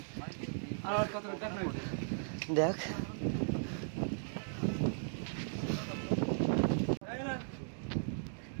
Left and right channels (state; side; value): silent; left; digital silence